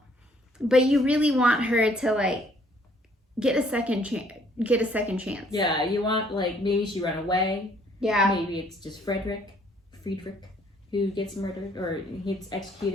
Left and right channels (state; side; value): normal; both; correlation 0.63